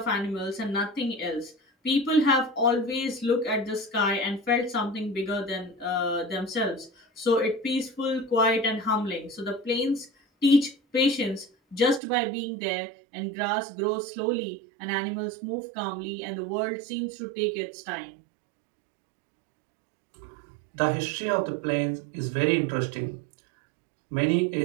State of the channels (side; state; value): left; drops out; at 12.0 s